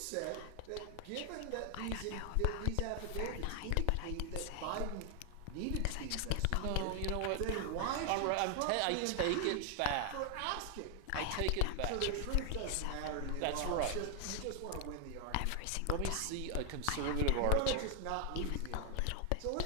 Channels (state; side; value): different; both; correlation 0.00